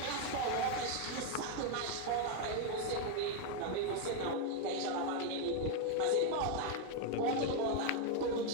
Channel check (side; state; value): both; different; correlation 0.01